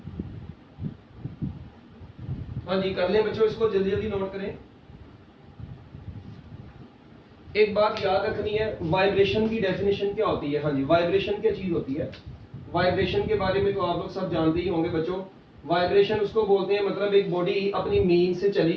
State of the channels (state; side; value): identical; both; correlation 1.00